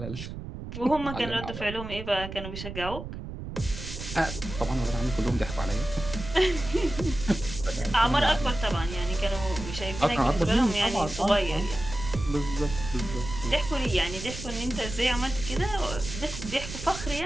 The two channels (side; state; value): right; noise; rumble, 9 dB below the sound